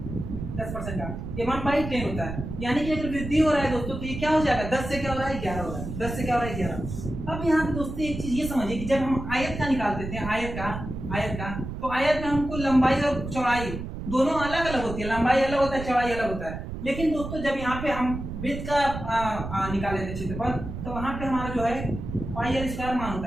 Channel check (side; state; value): right; noise; rumble, 7 dB below the sound